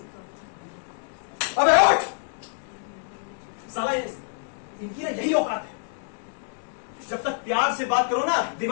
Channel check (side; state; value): right; silent; digital silence